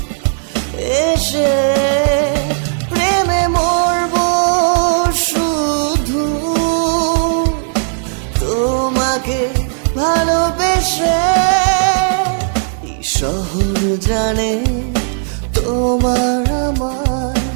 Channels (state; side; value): silent; left; digital silence